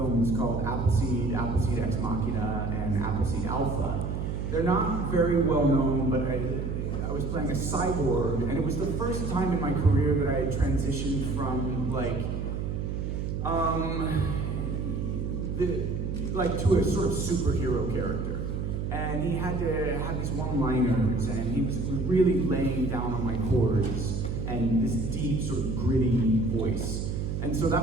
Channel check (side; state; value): right; noise; hum, 2 dB below the sound